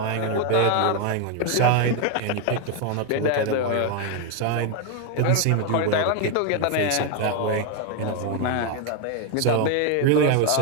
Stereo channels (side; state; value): both; different; correlation 0.01